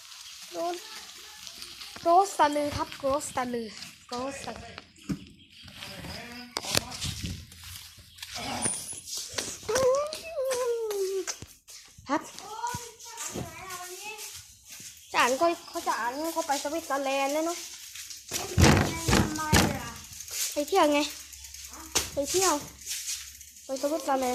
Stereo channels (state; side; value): identical; both; correlation 1.00